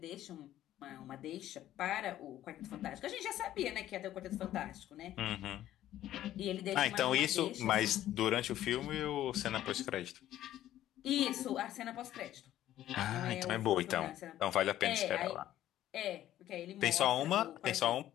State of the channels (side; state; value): right; quieter; 12.9 dB